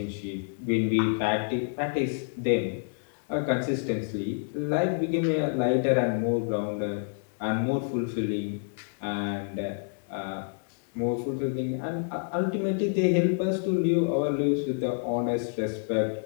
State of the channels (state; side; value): silent; right; digital silence